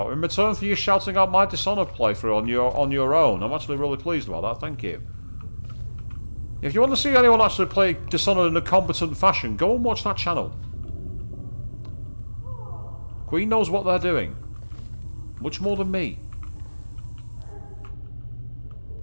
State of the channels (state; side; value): inverted; both; correlation -1.00